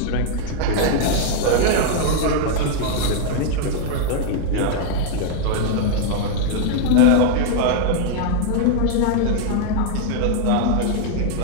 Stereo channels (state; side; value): different; both; correlation 0.00